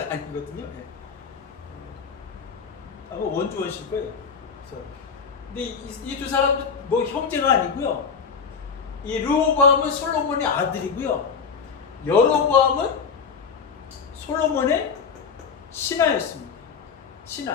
아니거든요. 아마 원주원실 거예요. 그래서 근데 이 두 사람도 뭐 형제가 아니고요. 이 르호보암은 솔로몬의 아들이고요. 여로보암은 솔로몬의 신하였습니다.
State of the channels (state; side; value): quieter; right; 5.9 dB